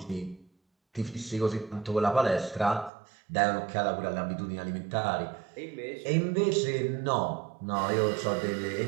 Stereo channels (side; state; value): left; drops out; at 2.9 s